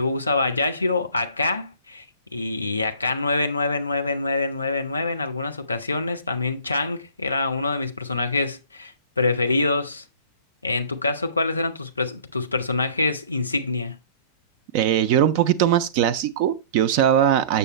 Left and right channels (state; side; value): inverted; both; correlation -0.46